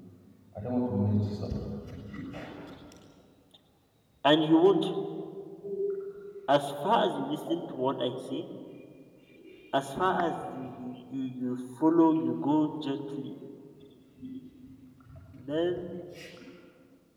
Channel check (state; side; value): identical; both; correlation 1.00